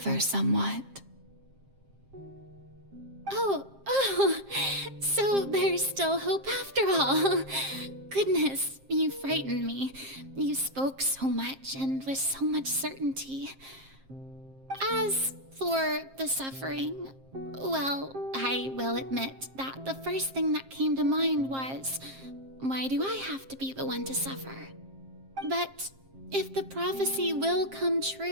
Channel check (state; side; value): late; left; 7.5 ms